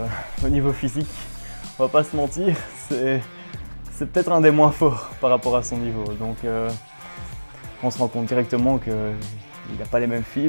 au niveau physique, on va pas se mentir, c'est peut-être un des moins forts par rapport à son niveau. Donc on se rend compte directement qu'il n'a pas les mêmes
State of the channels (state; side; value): inverted; both; correlation -1.00